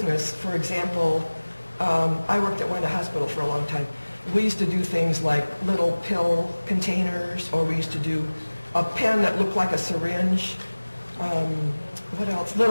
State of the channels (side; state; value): both; inverted; correlation -1.00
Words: for example, I worked at Wanda Hospital for a long time. We used to do things like little pill containers, or we used to do a pen that looked like a syringe. What else?